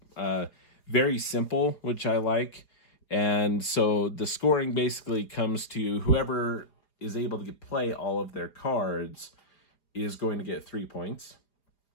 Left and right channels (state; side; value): late; right; 4.8 ms